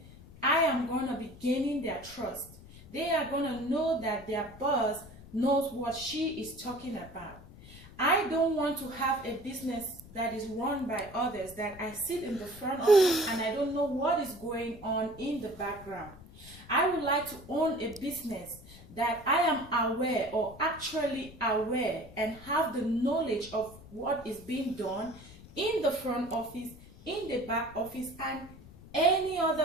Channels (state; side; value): noise; left; rumble, 19 dB below the sound